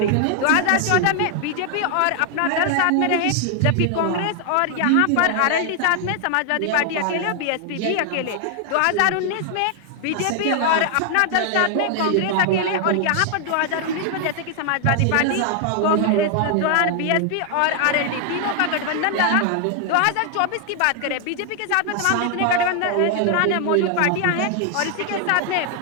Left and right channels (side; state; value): both; different; correlation 0.00